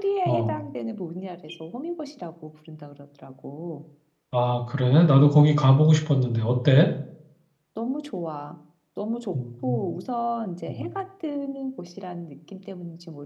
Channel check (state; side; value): identical; both; correlation 1.00